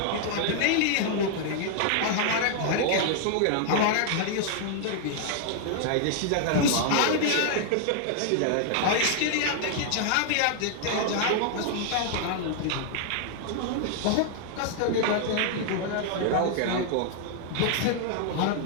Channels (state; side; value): different; both; correlation 0.00